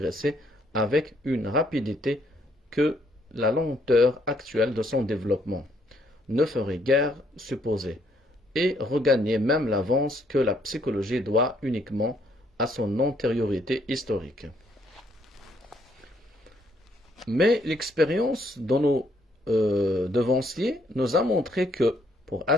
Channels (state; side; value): normal; both; correlation 0.69